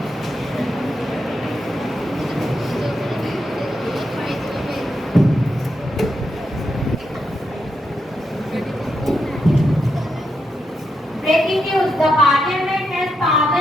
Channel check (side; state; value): both; normal; correlation 0.83